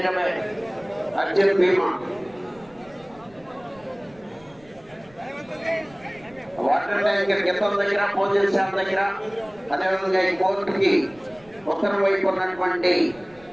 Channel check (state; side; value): noise; right; rumble, 27 dB below the sound